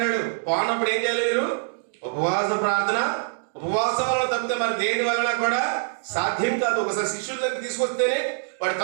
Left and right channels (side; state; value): left; silent; digital silence